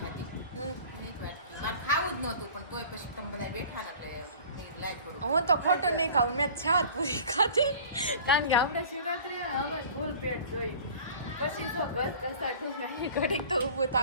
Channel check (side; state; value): both; inverted; correlation -0.43